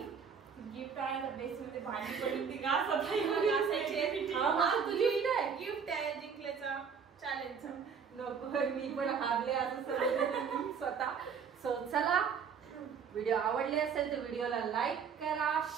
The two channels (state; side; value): quieter; left; 6.5 dB